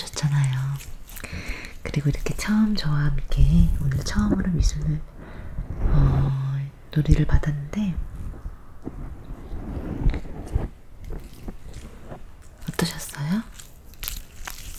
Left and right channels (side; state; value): both; identical; correlation 1.00